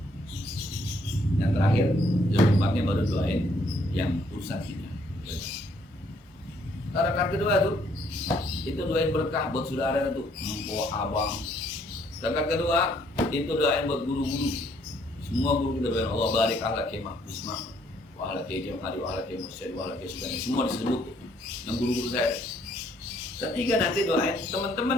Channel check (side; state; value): both; normal; correlation 0.67